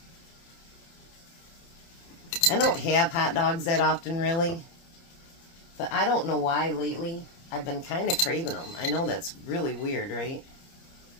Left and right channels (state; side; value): late; right; 30 ms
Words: I don't have hot dogs that often, really. But I don't know why lately I've been kind of craving them. I know that's really weird, right?